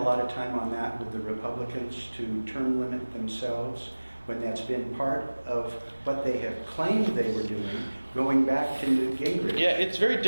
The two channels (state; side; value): inverted; both; correlation -1.00